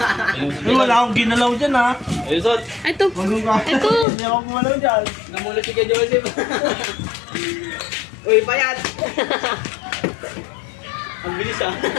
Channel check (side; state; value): right; drops out; at 4.0 s